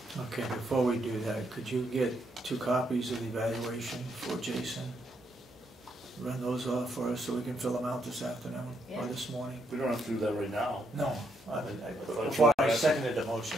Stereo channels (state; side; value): normal; both; correlation 0.76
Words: Okay, before we do that, could you get 2 copies of the evaluation for Jason? Run those off for us so we can fill them out this afternoon or Yeah. this morning? We don't have to do that right now. No, thought before you I were seconded the motion.